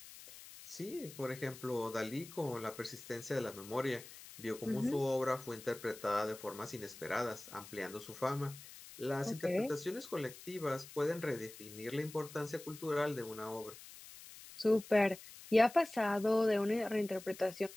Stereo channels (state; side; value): noise; left; hiss, 16 dB below the sound